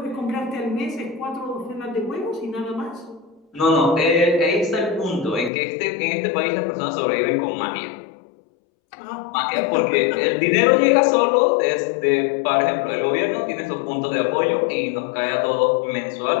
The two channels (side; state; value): right; drops out; at 5.5 s